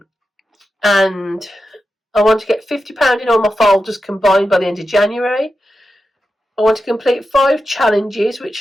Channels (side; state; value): both; normal; correlation 0.90